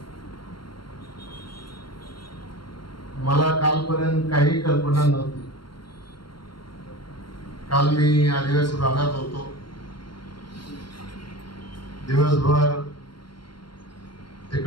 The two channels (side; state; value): right; late; 0.73 ms